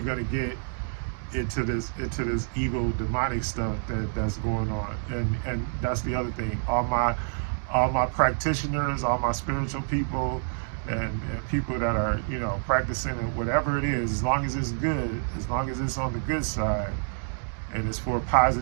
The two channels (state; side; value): silent; left; digital silence